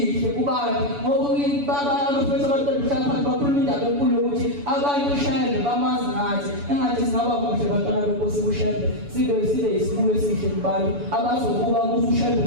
kubantu ngoba abafethu abantwana phansi bakhuluma indaba enkulu yokuthi abantu ushembe bamazi ngathi engathi singaba kuhle bantwana benkosi kushembe sibe yisibulo esihle kubantu abazokuba kuthi ushembe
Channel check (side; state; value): left; late; 7.0 ms